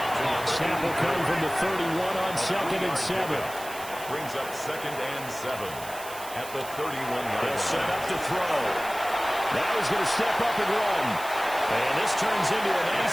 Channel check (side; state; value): right; noise; hiss, 14 dB below the sound